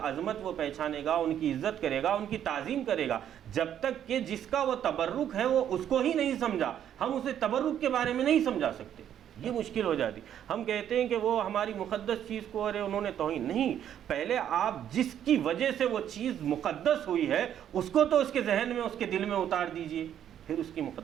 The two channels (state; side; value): quieter; left; 10.0 dB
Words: وہ پہچانے گا، ان کی عزت کرے گا، ان کی تعظیم کرے گا۔ جب تک کہ جس کا وہ تبرک ہے وہ اس کو ہی نہیں سمجھا، ہم اسے تبرک کے بارے میں نہیں سمجھا سکتے، یہ مشکل ہو جاتی۔ ہم کہتے ہیں کہ وہ ہماری مقدس چیز کو ارے انہوں نے توہین نہیں، پہلے آپ جس کی وجہ سے وہ چیز مقدس ہوئی ہے اس کو تو اس کے ذہن میں، اس کے دل میں اتار دیجئے، پھر اس کی